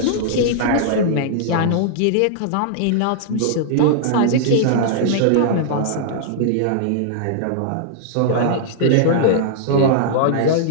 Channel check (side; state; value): both; different; correlation -0.01